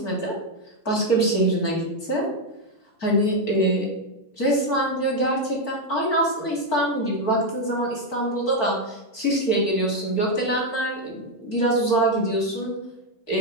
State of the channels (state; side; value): late; right; 4.5 ms